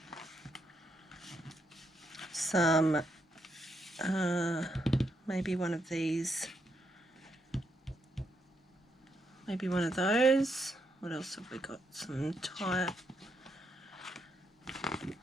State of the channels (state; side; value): normal; both; correlation 0.78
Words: some, maybe one of these, maybe one of those. What else have we got? Some type.